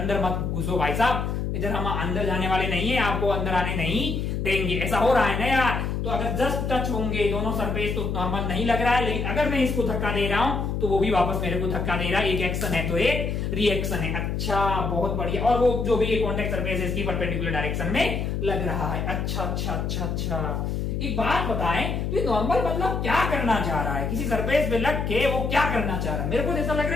मत घुसो भाई साहब, इधर हम अंदर जाने वाले नहीं है, आपको अंदर आने नहीं देंगे। ऐसा हो रहा है ना यार। तो अगर जस्ट टच होंगे दोनों सरफेस तो नॉर्मल नहीं लग रहा है, लेकिन अगर मैं इसको धक्का दे रहा हूं तो वो भी वापस मेरे को धक्का दे रहा है। एक एक्शन है तो एक रिएक्शन है। अच्छा बहुत बढ़िया। और वो जो भी कॉन्टेक्ट सरफेस है इसकी परपेंडिकुलर डायरेक्शन में लग रहा है। अच्छा अच्छा अच्छा अच्छा। एक बात बताएं, तो नॉर्मल मतलब क्या करना चाह रहा है? किसी सरफेस पे लग के वो क्या करना चाह रहा है? मेरे को ऐसा लग रहा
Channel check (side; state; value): left; noise; hum, 1 dB below the sound